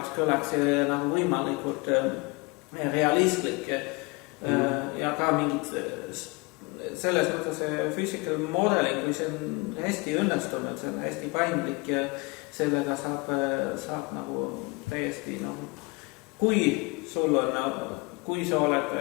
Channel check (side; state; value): right; quieter; 27.1 dB